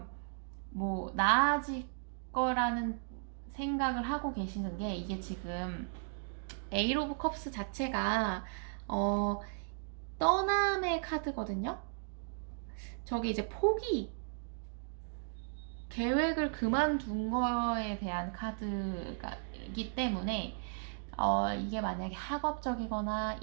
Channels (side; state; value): left; silent; digital silence